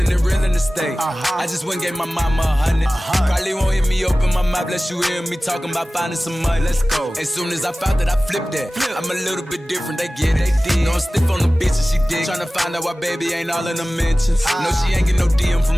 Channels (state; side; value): normal; both; correlation 0.97